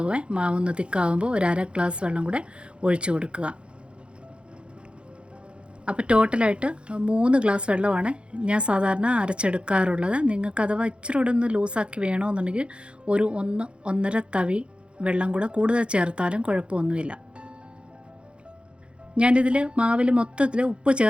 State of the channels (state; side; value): late; left; 0.057 ms